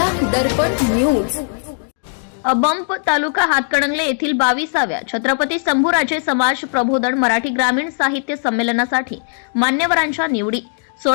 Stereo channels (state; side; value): silent; right; digital silence